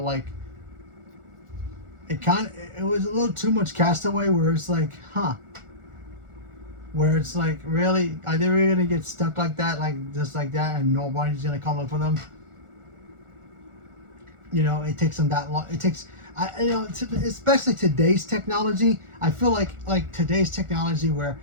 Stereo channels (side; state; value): left; late; 1.4 ms